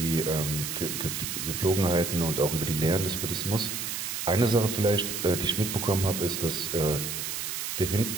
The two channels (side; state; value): right; noise; hiss, 4 dB below the sound